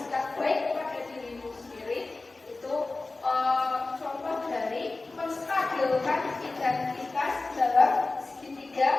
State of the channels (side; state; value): right; quieter; 3.4 dB